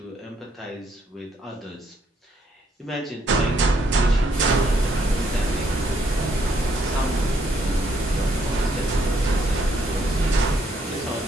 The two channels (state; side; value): normal; both; correlation 0.71